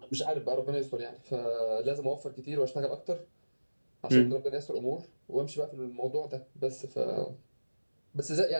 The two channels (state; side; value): inverted; both; correlation -1.00